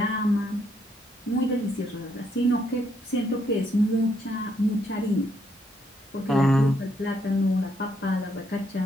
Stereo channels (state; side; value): normal; both; correlation 0.73